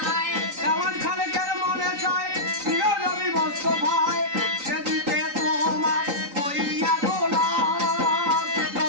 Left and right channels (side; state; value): left; late; 3.9 ms